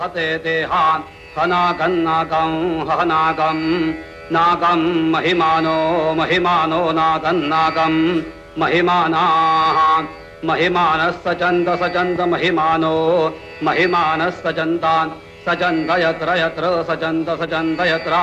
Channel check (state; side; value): identical; both; correlation 1.00